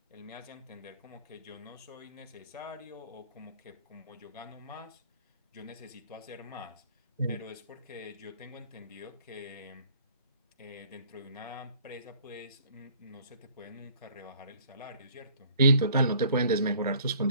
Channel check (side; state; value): both; inverted; correlation -0.56